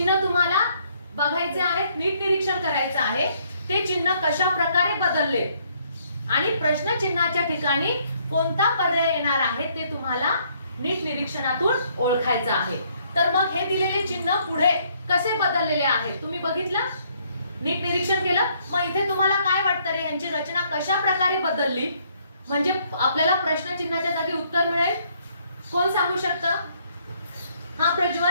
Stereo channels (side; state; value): both; inverted; correlation -0.67